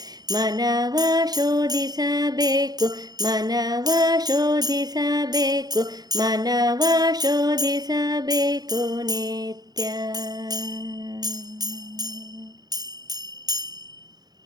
ಮನವ ಶೋಧಿಸಬೇಕು, ಮನವ ಶೋಧಿಸಬೇಕು, ಮನವ ಶೋಧಿಸಬೇಕು ನಿತ್ಯ.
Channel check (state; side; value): late; left; 0.19 ms